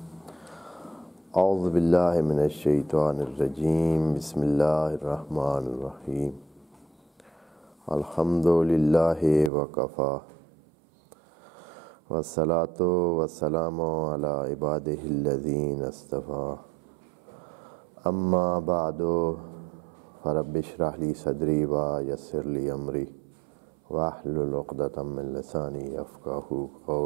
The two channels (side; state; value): left; drops out; at 9.5 s